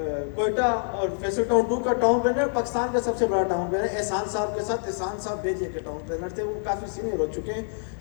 Quetta اور فیصل ٹاؤن 2 کا ٹاؤن پلانر، پاکستان کا سب سے بڑا ٹاؤن پلانر احسان صاحب کے ساتھ. احسان صاحب بیجے کے ٹاؤن پلانر تھے، وہ کافی سینئر ہو چکے ہیں،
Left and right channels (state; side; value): silent; right; digital silence